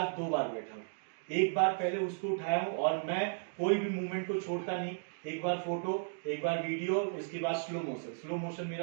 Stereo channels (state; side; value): silent; left; digital silence